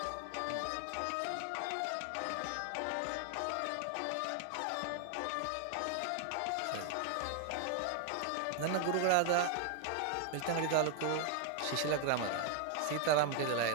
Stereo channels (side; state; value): both; different; correlation 0.00